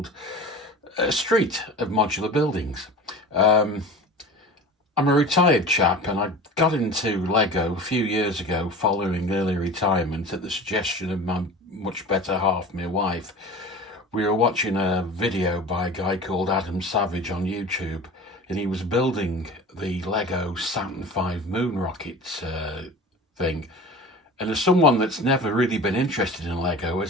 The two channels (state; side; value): normal; both; correlation 0.36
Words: a street of modular buildings. I'm a retired chap and I got into Lego a few years ago following early retirement at the suggestion of my much better half, my wife. We were watching a video by a guy called Adam Savage on YouTube, and he was building the Lego Saturn V moon rocket thing. And as someone that's never really been interested in Lego,